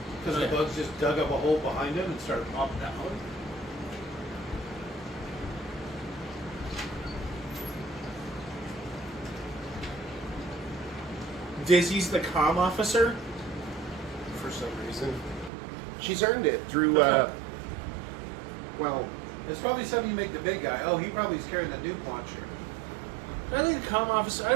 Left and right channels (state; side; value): drops out; left; at 15.5 s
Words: Because Yeah. the bugs just dug up a hole behind him and started popping out. Dizzy's the comm officer. For some reason, she's earned it through. Well, It's probably something you make the big guy. Oh, he probably is carrying the nuke launcher. I think the comm officer. I